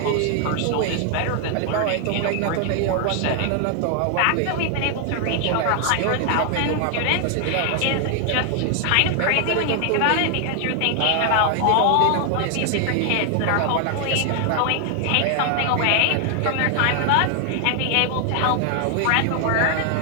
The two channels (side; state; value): both; different; correlation 0.00